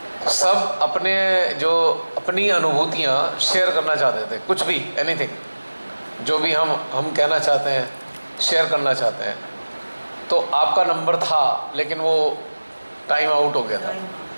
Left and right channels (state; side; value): inverted; both; correlation -1.00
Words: सब अपने जो अपनी अनुभूतियाँ शेयर करना चाहते थे, कुछ भी, एनीथिंग, जो भी हम कहना चाहते हैं, शेयर करना चाहते हैं। तो आपका नंबर था, लेकिन वो टाइम आउट हो गया था।